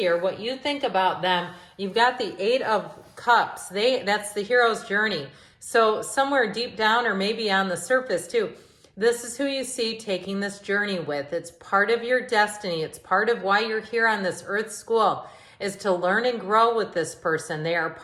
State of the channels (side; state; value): both; identical; correlation 1.00